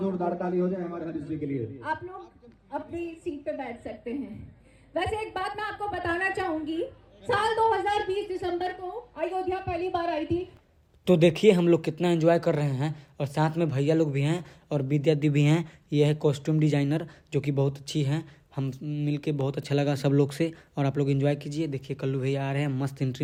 ताली हो जाए हमारे हरीश जी के लिए। आप लोग अपनी सीट पे बैठ सकते हैं। वैसे एक बात मैं आपको बताना चाहूंगी, साल 2020 दिसंबर को अयोध्या पहली बार आई थी। तो देखिए हम लोग कितना एंजॉय कर रहे हैं और साथ में भैया लोग भी हैं और विद्या दी भी हैं। ये है कॉस्ट्यूम डिजाइनर जो कि बहुत अच्छी हैं। हम मिलके बहुत अच्छा लगा सब लोग से। और आप लोग एंजॉय कीजिए। देखिए कल्लू भैया आ रहे हैं मस्त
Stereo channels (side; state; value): both; identical; correlation 1.00